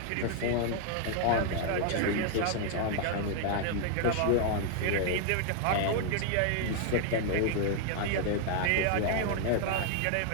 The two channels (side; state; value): both; different; correlation 0.00